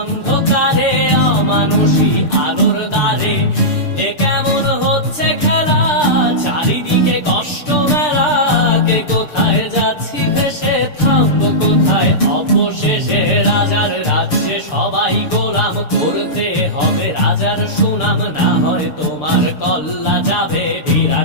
অমানুষী আলোর দ্বারে। এ কেমন হচ্ছে খেলা, চারিদিকে কষ্ট মেলা, কে কোথায় যাচ্ছি ভেসে, থামবো কোথায় অবশেষে। রাজার রাজ্যে সবাই গোলাম, করতে হবে রাজার সুনাম, না হয় তোমার কল্লা যাবে,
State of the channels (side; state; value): right; late; 6.7 ms